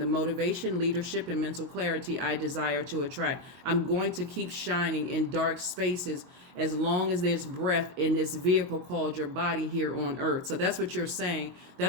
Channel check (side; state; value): left; late; 22 ms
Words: motivation, leadership, and mental clarity I desire to attract. I'm going to keep shining in dark spaces as long as there's breath in this vehicle called your body here on earth. So that's what you're saying.